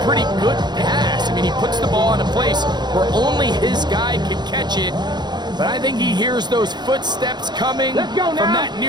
pretty good pass. I mean, he puts the ball in a place where only his guy can catch it. But I think he hears those footsteps coming from that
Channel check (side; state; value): left; late; 0.21 ms